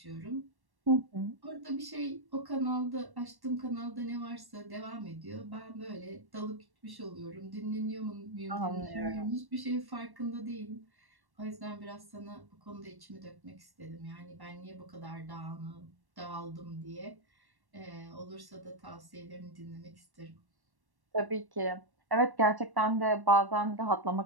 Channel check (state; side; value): late; left; 1.1 ms